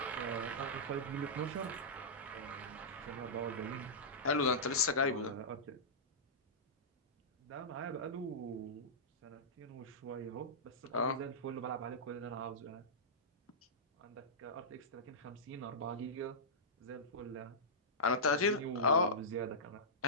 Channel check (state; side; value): normal; both; correlation -0.15